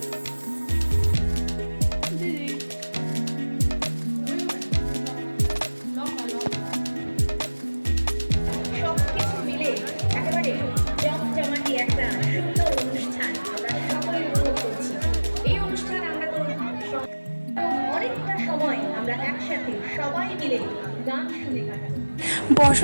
সবকিছু মিলে একেবারে জমজমাটি একটা সুন্দর অনুষ্ঠান আমরা সকলে উপভোগ করছি। এই অনুষ্ঠান আমরা তো অনেকটা সময় আমরা একসাথে সবাই মিলে গান শুনে কাটাবো।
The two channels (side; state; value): both; inverted; correlation -1.00